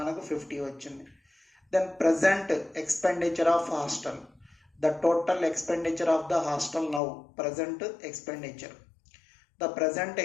మనకు 50 వచ్చింది. Then present expenditure of hostel. The total expenditure of the hostel now. Present expenditure. The present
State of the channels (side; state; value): right; drops out; at 7.0 s